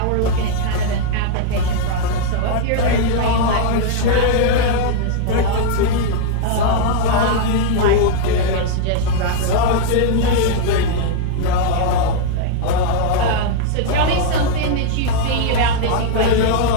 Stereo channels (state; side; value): different; both; correlation -0.01